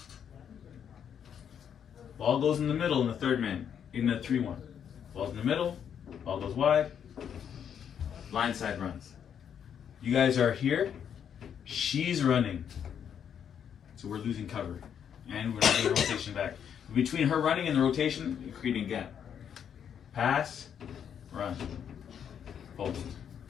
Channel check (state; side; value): quieter; right; 8.4 dB